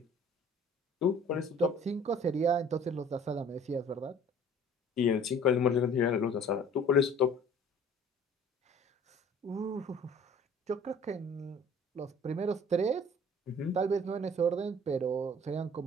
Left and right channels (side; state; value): both; normal; correlation 0.51